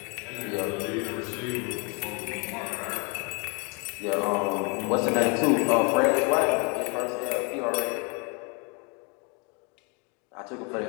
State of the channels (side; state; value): right; quieter; 33.0 dB